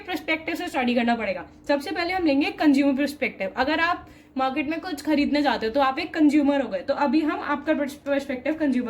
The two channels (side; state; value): both; identical; correlation 1.00